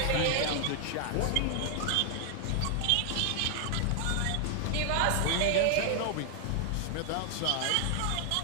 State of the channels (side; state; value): both; different; correlation 0.00